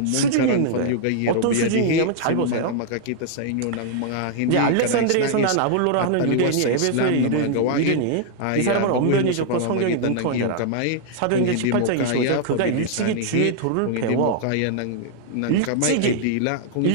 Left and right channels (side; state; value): both; different; correlation -0.01